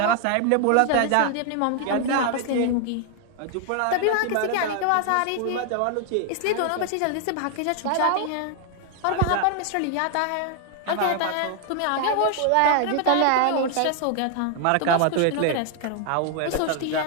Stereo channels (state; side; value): different; both; correlation 0.00